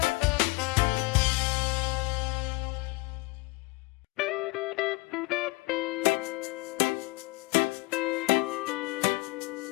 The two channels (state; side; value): quieter; right; 25.5 dB